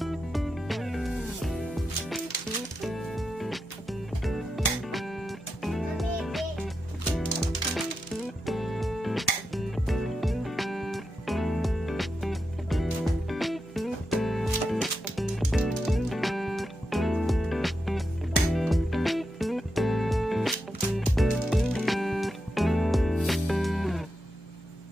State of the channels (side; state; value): both; normal; correlation 0.88